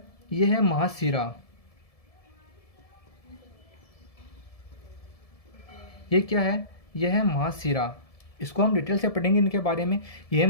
ये है महाशिरा। ये क्या है, यह है महाशिरा। इसको हम डिटेल से पढ़ेंगे इनके बारे में। यह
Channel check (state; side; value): late; right; 1.7 ms